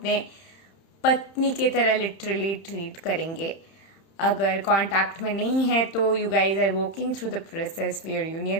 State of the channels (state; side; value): late; right; 30 ms